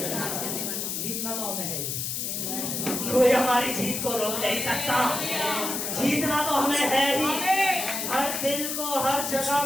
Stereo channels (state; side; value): noise; left; hiss, 2 dB below the sound